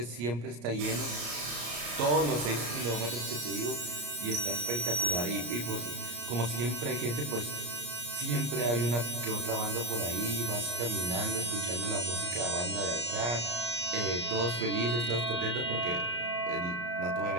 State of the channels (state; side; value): late; left; 34 ms